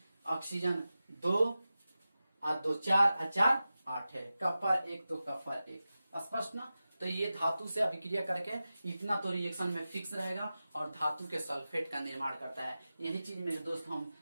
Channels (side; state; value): both; inverted; correlation -0.94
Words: ऑक्सीजन 2 और 2 4 और 4 8 है, कप्पर 1 तो कप्पर 1। स्पष्ट ना। तो ये धातु से अभिक्रिया करके इतना तो रिएक्शन में फिक्स रहेगा और धातु के सल्फेट का निर्माण करता है। यही चीज मेरे दोस्त, हम